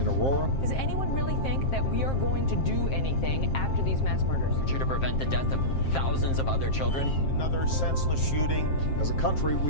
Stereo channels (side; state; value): right; late; 7.6 ms